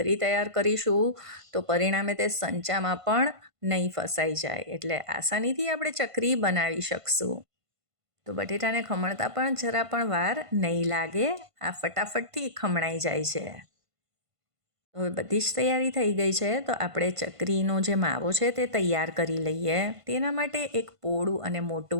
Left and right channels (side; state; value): left; late; 1.5 ms